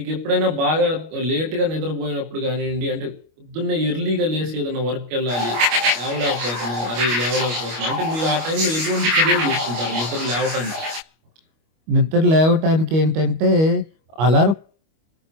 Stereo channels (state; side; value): late; left; 25 ms